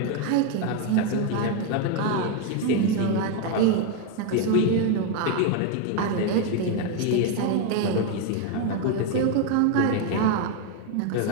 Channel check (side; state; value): both; different; correlation 0.01